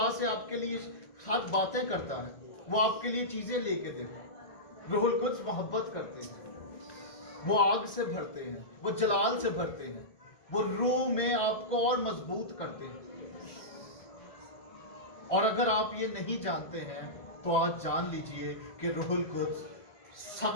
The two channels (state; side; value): late; right; 1.6 ms